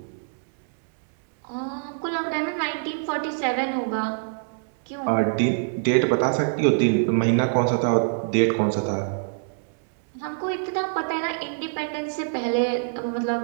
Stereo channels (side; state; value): left; silent; digital silence